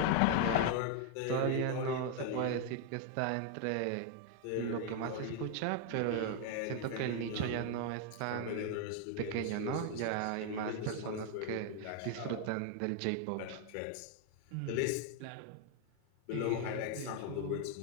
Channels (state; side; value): different; both; correlation 0.00